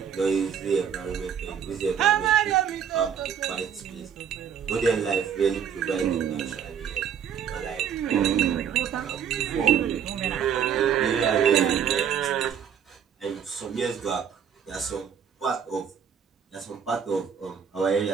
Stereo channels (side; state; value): left; quieter; 8.0 dB